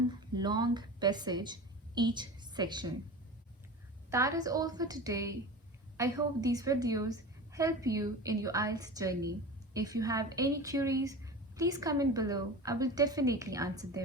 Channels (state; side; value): normal; both; correlation 0.32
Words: long passage each section. That is all for today. I hope these videos help you in your IELTS journey. If you have any queries, please comment below. I will definitely answer